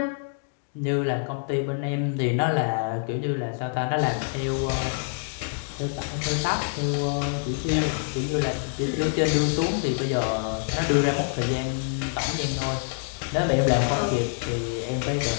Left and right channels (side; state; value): right; silent; digital silence